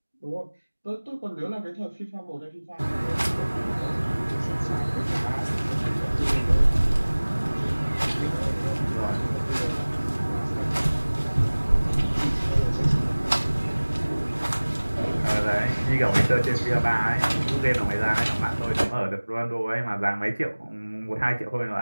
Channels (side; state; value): both; inverted; correlation -1.00